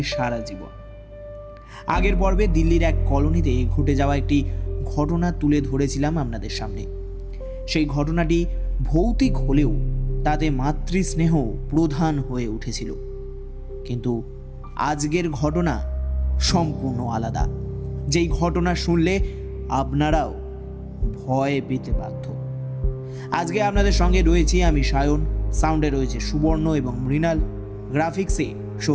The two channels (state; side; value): identical; both; correlation 1.00